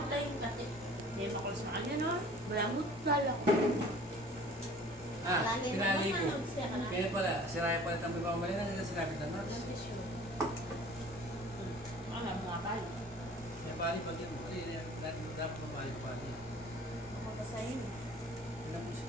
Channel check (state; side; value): normal; both; correlation 0.48